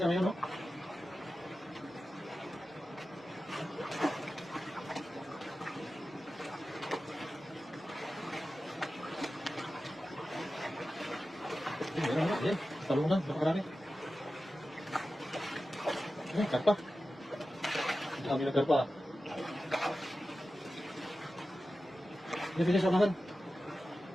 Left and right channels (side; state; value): both; normal; correlation 0.94